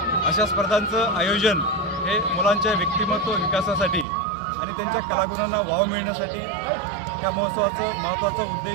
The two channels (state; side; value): drops out; left; at 4.0 s